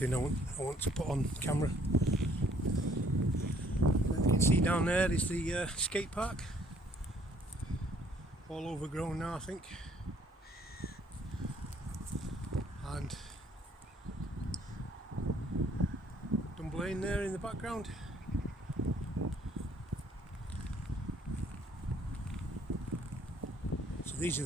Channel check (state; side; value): normal; both; correlation 0.62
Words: I want to put on camera. And you can see down there is the Skatepark, all overgrown now I think, and Dunblane there in the background. So these are